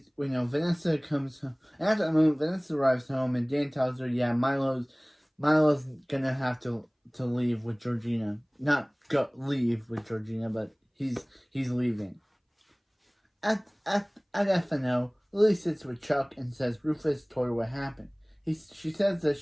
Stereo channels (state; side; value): identical; both; correlation 1.00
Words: Vanessa comes home. At that moment, Vanessa arrives home and Dan tells her, Milo's gonna have to leave with Georgina. Not leave with Georgina, but he's leaving. At FNO, Lily sits with Chuck and says Rufus told her what happened. She says that